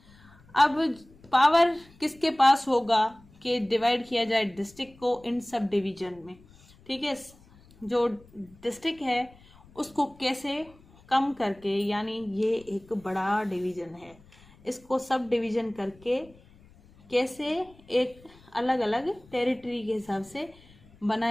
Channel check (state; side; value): noise; left; rumble, 26 dB below the sound